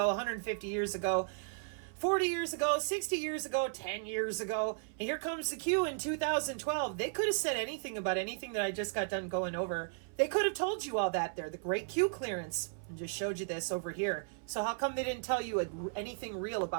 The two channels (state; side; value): silent; left; 54 dB below the other